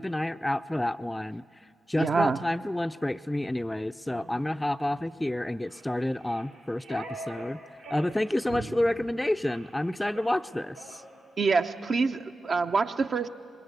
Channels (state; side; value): normal; both; correlation 0.94